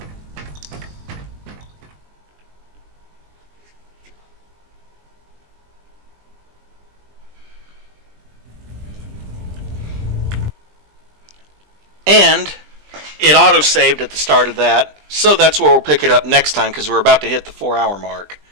And it auto-saved at the start of that, so that's where we'll pick it up next time, because we're about to hit the 4-hour mark.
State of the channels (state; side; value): late; left; 20 ms